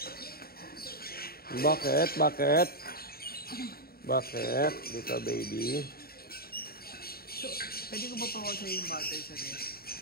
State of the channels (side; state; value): right; late; 0.44 ms